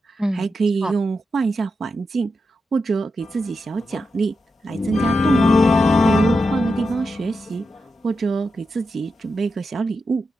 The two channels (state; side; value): normal; both; correlation 0.88